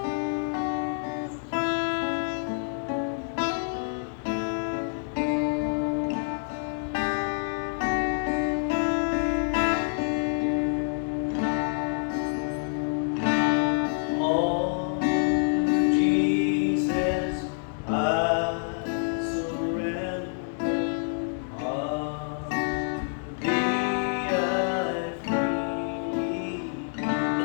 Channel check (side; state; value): right; silent; 60 dB below the other